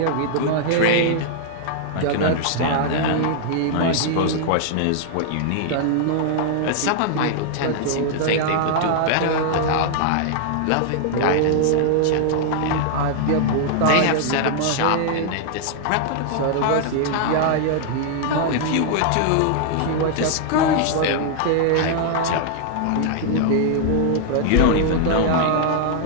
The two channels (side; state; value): both; different; correlation 0.00